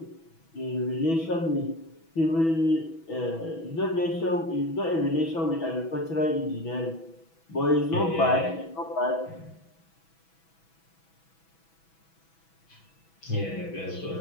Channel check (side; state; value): right; late; 6.1 ms